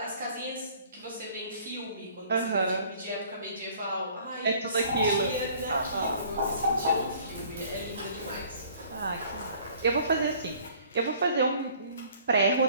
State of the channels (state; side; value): inverted; both; correlation -0.55